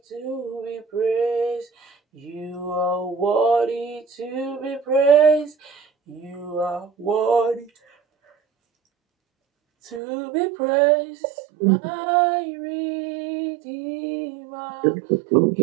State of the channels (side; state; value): left; drops out; at 10.0 s